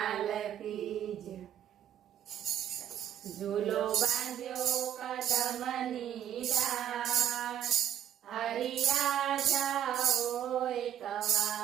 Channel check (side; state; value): left; quieter; 10.4 dB